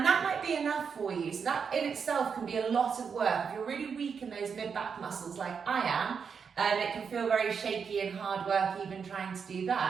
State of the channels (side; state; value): left; quieter; 6.3 dB